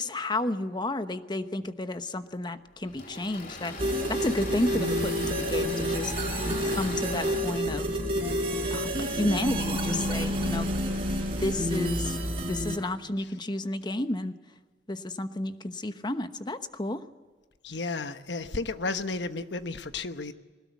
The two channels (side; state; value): both; normal; correlation 0.55